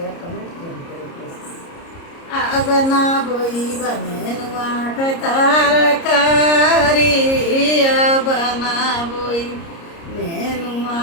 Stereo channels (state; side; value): late; right; 30 ms